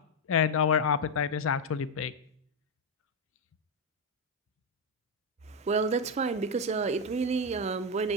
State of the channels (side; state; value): both; normal; correlation 0.05